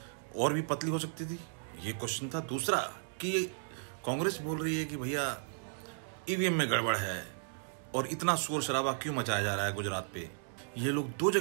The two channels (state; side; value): silent; left; digital silence